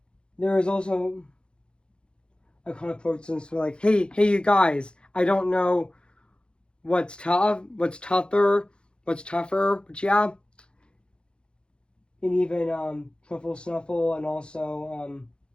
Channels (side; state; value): right; late; 0.053 ms